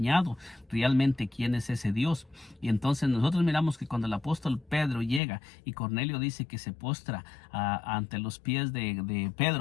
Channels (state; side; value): drops out; right; at 5.2 s